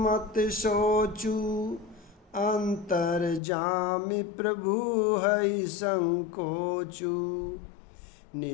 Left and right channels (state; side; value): drops out; right; at 3.4 s